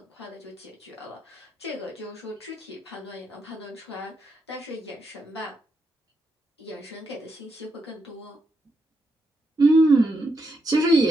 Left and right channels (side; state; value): both; normal; correlation 0.81